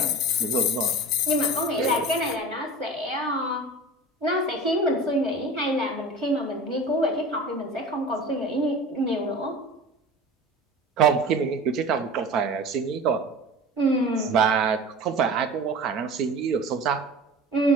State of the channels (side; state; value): both; normal; correlation 0.36